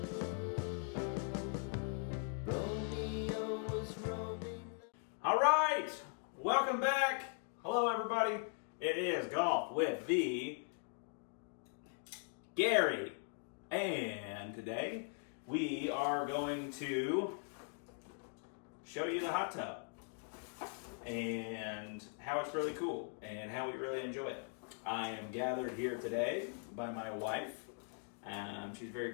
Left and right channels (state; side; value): silent; right; 51 dB below the other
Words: All right, welcome back. Hello, everybody. It is Golf with the Gary. And today we are going to show you the hot tub and how it's really cool and how we really enjoy it. I am gathered here today by my wife. She's very